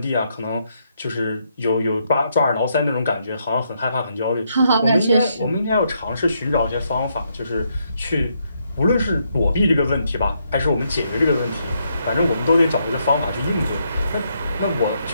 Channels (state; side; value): inverted; both; correlation -0.77